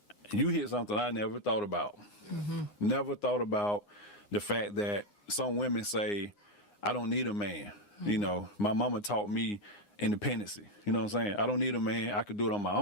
you hit something I never thought about. Yeah. Never thought about the fact that some women say, I don't need a man. You know, my mama taught me independency. You know what I'm saying? I don't need a man. I could do it on my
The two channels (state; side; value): late; right; 9.7 ms